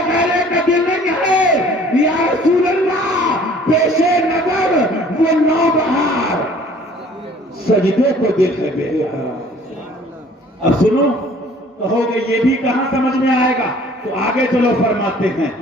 غیرے کا دل نہیں ہے، یا رسول اللہ پیش نظر وہ نو بہار، سجدے کو دل ہے بے قرار۔ اب سنو، کہو گے یہ بھی کہاں سمجھ میں آئے گا، تو آگے چلو، فرماتے ہیں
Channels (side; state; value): both; normal; correlation 0.53